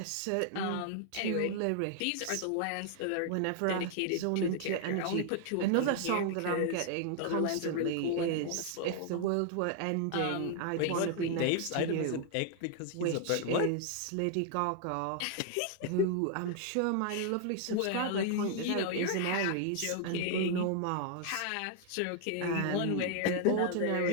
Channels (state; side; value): different; both; correlation 0.00